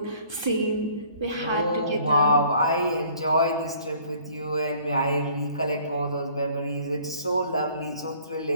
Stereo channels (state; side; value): inverted; both; correlation -0.56